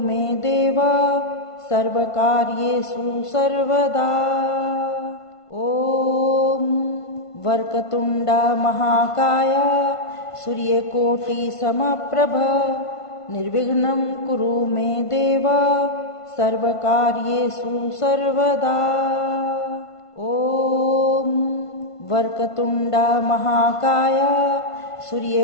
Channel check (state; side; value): late; right; 1.5 ms